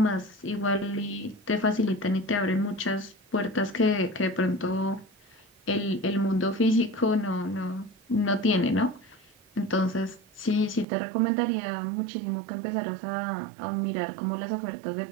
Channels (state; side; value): drops out; left; at 10.9 s